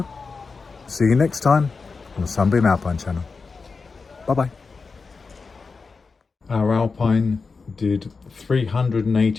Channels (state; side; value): quieter; right; 4.6 dB